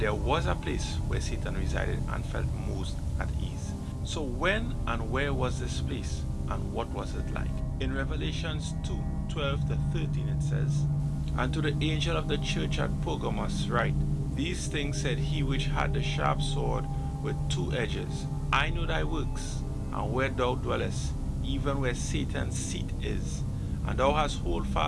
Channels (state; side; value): identical; both; correlation 1.00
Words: was a place where Satan resided and felt most at ease. So when and where was this place, and what was it like? In Revelations 2:12 to 13 it says, "And to the angel of the church at Pergamos write, These things said he which had the sharp sword with two edges, I know thy works, and where thou dwellest, even where Satan's seat is. And thou hast hold